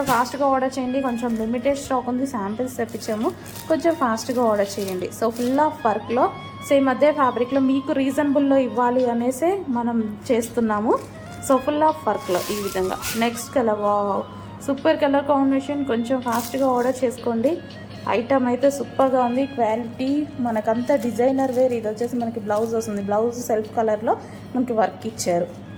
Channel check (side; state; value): both; identical; correlation 1.00